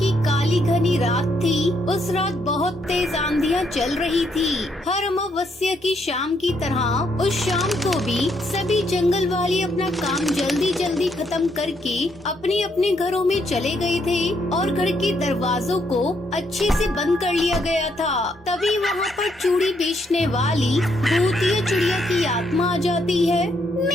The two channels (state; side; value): normal; both; correlation 0.74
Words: काली घनी रात थी। उस रात बहुत तेज आंधियां चल रही थी। हर अमावस्या की शाम की तरह उस शाम को भी सभी जंगल वाले अपना काम जल्दी जल्दी खत्म करके अपने अपने घरों में चले गए थे और घर के दरवाजों को अच्छे से बंद कर लिया गया था। तभी वहाँ पर चूड़ी बेचने वाली भूतिया चिड़िया की आत्मा आ जाती है।